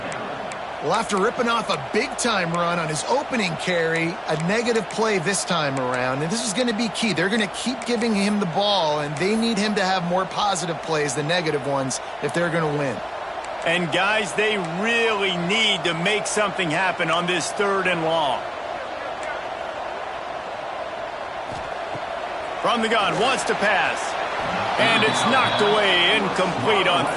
Well, after ripping off a big-time run on his opening carry, a negative play this time around, and this is going to be key. They're going to keep giving him the ball, and they need him to have more positive plays than negative ones if they're going to win. And, guys, they really need to make something happen on this 3rd and long. From the gun, wants to pass. And it's knocked away, incomplete on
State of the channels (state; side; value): identical; both; correlation 1.00